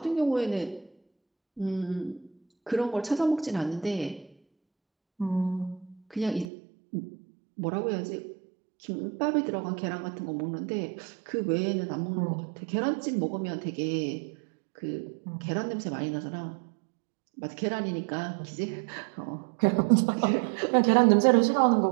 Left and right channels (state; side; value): drops out; left; at 6.5 s